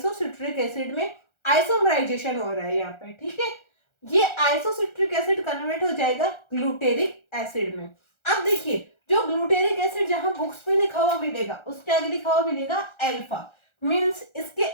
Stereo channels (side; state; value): right; late; 1.3 ms